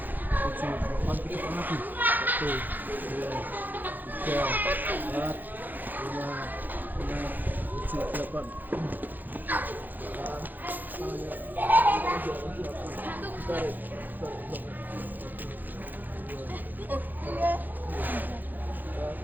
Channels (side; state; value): left; late; 0.086 ms